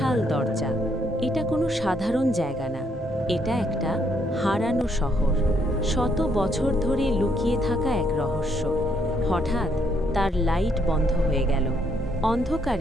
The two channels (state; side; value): normal; both; correlation 0.72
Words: দরজা। এটা কোনো সাধারণ জায়গা না, এটা একটা হারানো শহর, শত বছর ধরে লুকিয়ে থাকা এক রহস্য। হঠাৎ তার লাইট বন্ধ হয়ে গেল।